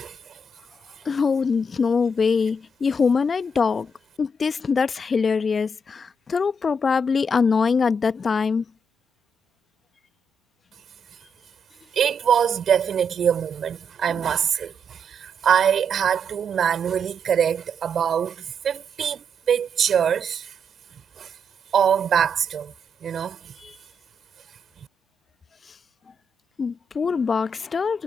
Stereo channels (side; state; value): both; normal; correlation 0.78